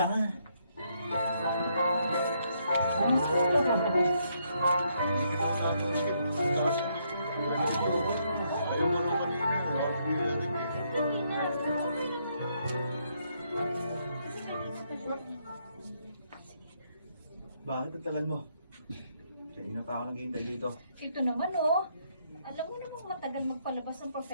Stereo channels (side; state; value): both; inverted; correlation -0.74